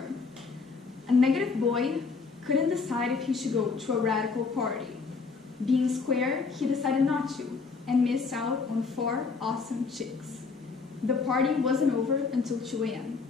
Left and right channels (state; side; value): quieter; right; 4.7 dB